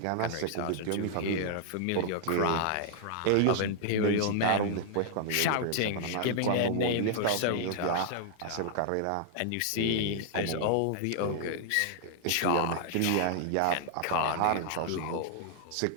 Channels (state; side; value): different; both; correlation -0.01